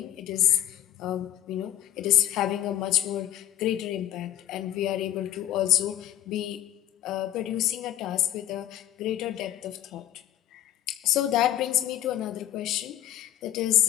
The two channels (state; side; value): quieter; right; 12.7 dB